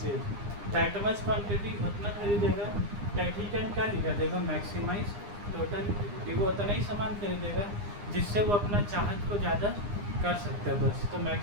that much quantity, उतना खरीदेगा दैट ही कैन क्या लिखा देगा, मैक्सिमाइज टोटल यूटिलिटी। वो उतना ही सामान खरीदेगा जिससे वो अपना चाहत को ज़्यादा कर सकते हैं बस। तो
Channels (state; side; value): late; left; 9.8 ms